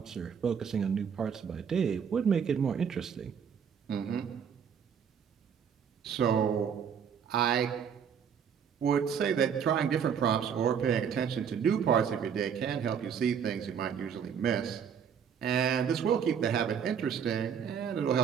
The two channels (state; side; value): quieter; left; 7.5 dB